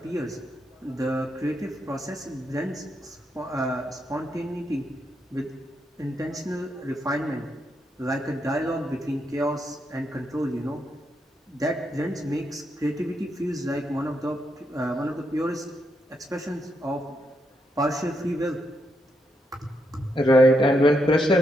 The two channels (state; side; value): normal; both; correlation 0.80